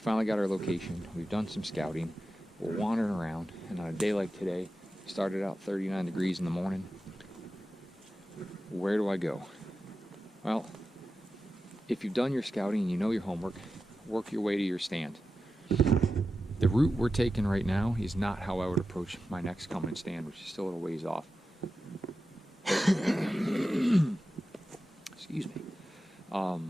got our location. We've done some scouting. We're wandering around, and on a day like today, started out 39 degrees in the morning. Where do I go? Well, if you've done your scouting and you know your homework, work your way to your stand. The route we're taking right now is not how I would approach my next coming stand, which is still a little ways off. Excuse me.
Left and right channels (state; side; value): normal; both; correlation 0.92